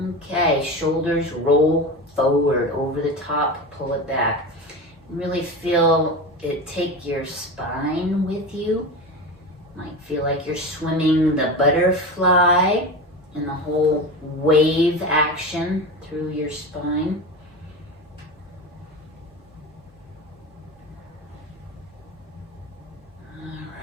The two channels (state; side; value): normal; both; correlation 0.25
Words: Okay, shoulders roll forward, over the top, pull it back. Really feel it take your spine with you. Might feel like you're swimming the butterfly and the whole wave action through your spine. All